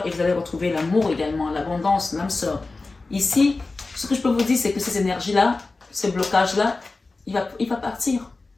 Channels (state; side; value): quieter; right; 3.6 dB